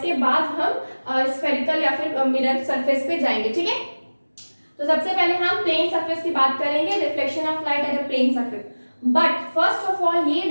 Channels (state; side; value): inverted; both; correlation -1.00